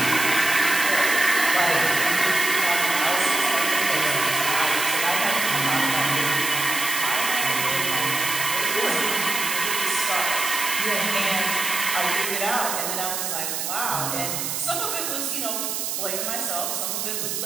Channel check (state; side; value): noise; right; hiss, 2 dB below the sound